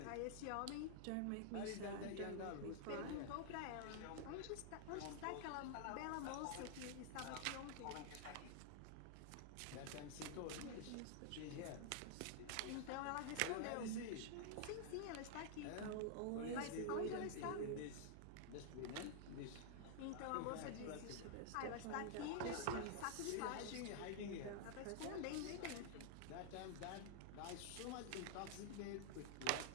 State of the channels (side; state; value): both; different; correlation -0.01